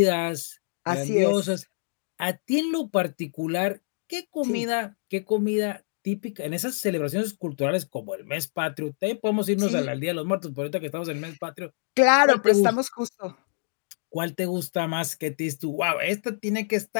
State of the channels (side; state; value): right; silent; digital silence